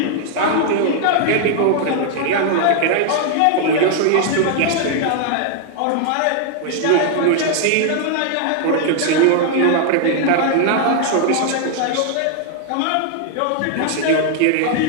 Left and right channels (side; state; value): both; different; correlation 0.00